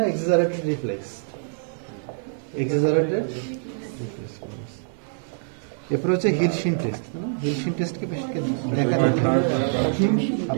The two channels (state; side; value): silent; left; digital silence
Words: এক্সাজারেটেড রিফ্লেক্স, এক্সাজারেটেড রিফ্লেক্স ক্লোনাস। এরপর হচ্ছে হিলশিন টেস্ট, হিলশিন টেস্টকে পেশেন্টকে দেখা দিতে হবে।